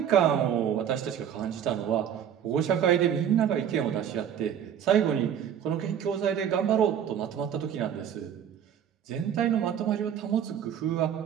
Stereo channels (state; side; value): quieter; left; 9.1 dB